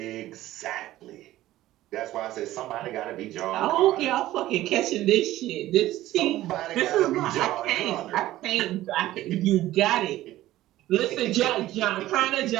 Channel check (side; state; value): left; quieter; 15.3 dB